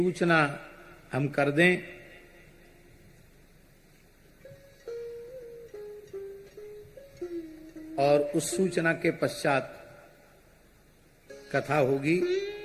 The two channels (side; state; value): both; identical; correlation 1.00